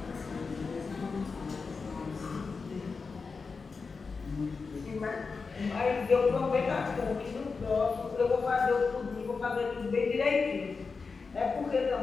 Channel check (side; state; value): right; quieter; 4.7 dB